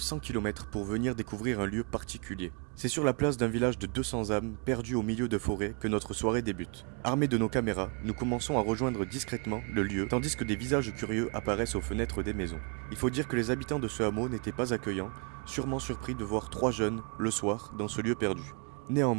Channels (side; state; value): left; quieter; 35.8 dB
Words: km pour venir découvrir un lieu particulier. C'est sur la place d'un village de 200 âmes, perdu au milieu de forêts, que notre soirée débute. Armés de nos caméras, nous commençons à rejoindre discrètement le lieu, tandis que des visages curieux apparaissent aux fenêtres des maisons. Il faut dire que les habitants de ce hameau n'étaient pas accueillants, sûrement surpris de voir 3 jeunes, le soir, dans ce lieu perdu.